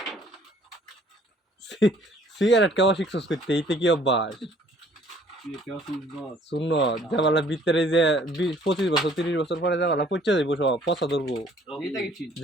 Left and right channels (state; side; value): normal; both; correlation 0.58